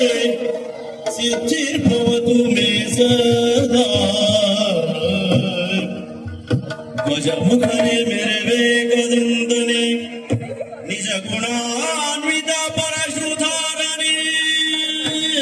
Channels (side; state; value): both; identical; correlation 1.00